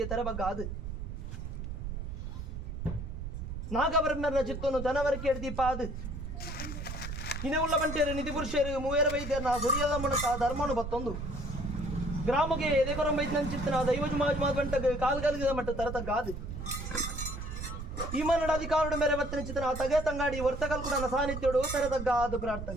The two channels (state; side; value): noise; right; rumble, 6 dB below the sound